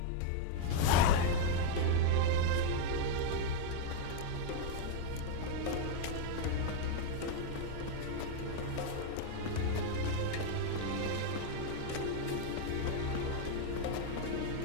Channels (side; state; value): both; different; correlation 0.00